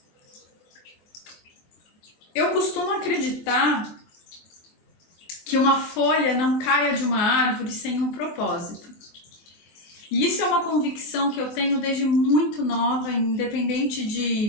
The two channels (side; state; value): right; late; 24 ms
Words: Eu costumo acreditar que uma folha não caia de uma árvore sem um propósito. E isso é uma convicção que eu tenho desde muito nova, independente